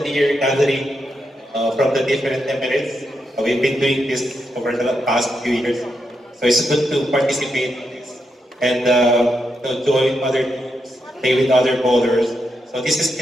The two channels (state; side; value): normal; both; correlation 0.84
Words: year gathering from the different Emirates. We've been doing this over the past few years. So it's good to participate in this and join other teams, play with other bowlers. So